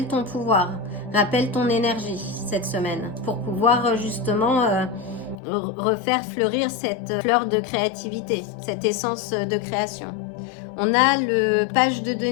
ton pouvoir, rappelle ton énergie cette semaine pour pouvoir justement refaire fleurir cette fleur de créativité, cette essence de création. On a le page de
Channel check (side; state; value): right; drops out; at 5.4 s